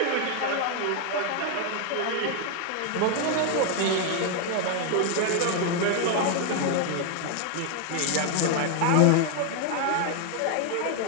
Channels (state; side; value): different; both; correlation 0.01